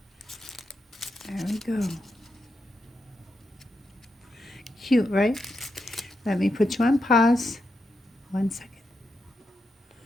There we go. Cute, right? Let me put you on pause. 1 second.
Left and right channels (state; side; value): normal; both; correlation 0.85